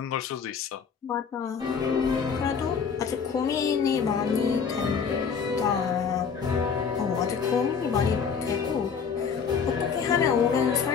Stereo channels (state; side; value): quieter; right; 6.3 dB